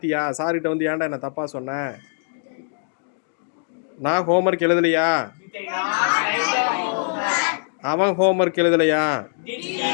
சார்கிட்ட வந்து ஏன்டா என்ன தப்பாக சொன்னேன்? நான் ஹோம்ஒர்க் எழுதலையா? அவன் ஹோம்ஒர்க் எழுதலையா?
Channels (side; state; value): right; silent; digital silence